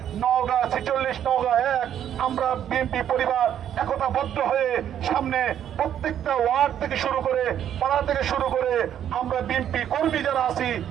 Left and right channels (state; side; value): quieter; left; 10.0 dB